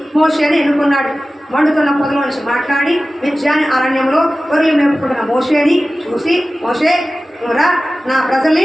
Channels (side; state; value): both; normal; correlation 0.96